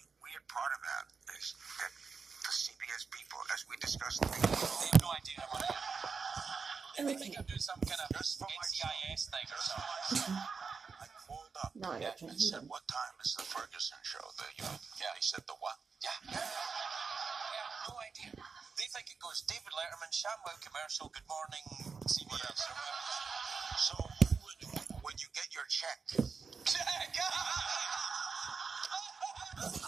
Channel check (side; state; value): left; quieter; 5.2 dB